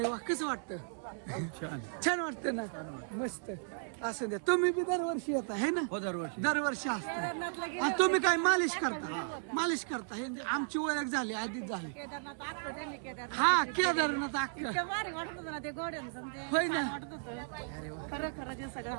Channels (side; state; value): left; silent; digital silence